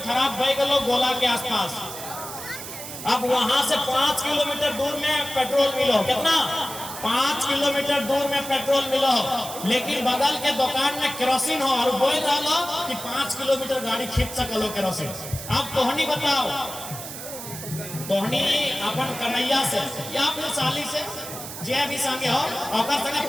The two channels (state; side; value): noise; right; hiss, 10 dB below the sound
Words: बह गलो गोला के आसपास। अब वहां से 5 किलोमीटर दूर में पेट्रोल मिलो, कितना 5 किलोमीटर दूर में पेट्रोल मिलो, लेकिन बगल के दुकान में केरोसिन हो और बोल रहा कि 5 किलोमीटर गाड़ी खींच सकलो केरोसिन। अब तोहनी बताओ, तोहनी अपन कन्हैया से या फिर साली से जे भी संगे हो और संगे